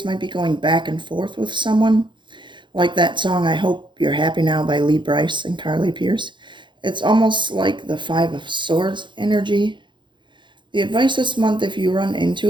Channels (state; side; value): late; left; 0.23 ms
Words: might be going back and forth with someone, like that song I Hope You're Happy Now by Lee Brice and Carly Pierce. It's almost like the Five of Swords energy. The advice this month, if you run